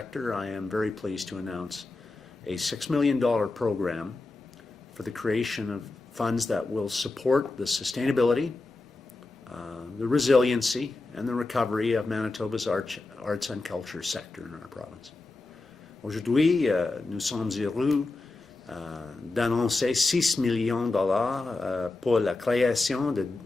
I am very pleased to announce a $6 million program for the creation of funds that will support the sustainability, the resiliency, and the recovery of Manitoba's arts and culture sector in our province. Aujourd'hui, nous sommes heureux d'annoncer 6 millions de dollars pour la création de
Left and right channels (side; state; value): right; quieter; 3.3 dB